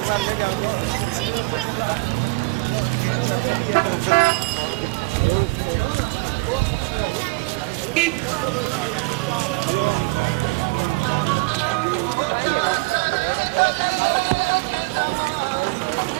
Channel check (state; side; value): quieter; left; 25.4 dB